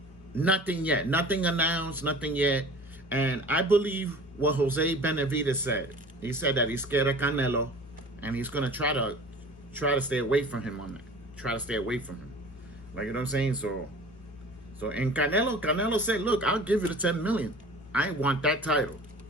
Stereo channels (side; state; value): both; normal; correlation 0.42